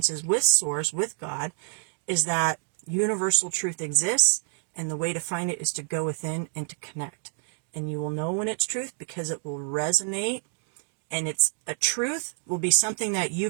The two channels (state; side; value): silent; left; 59 dB below the other